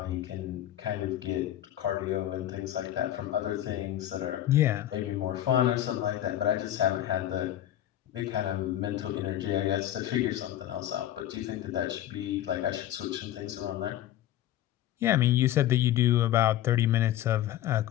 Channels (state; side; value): quieter; right; 12.6 dB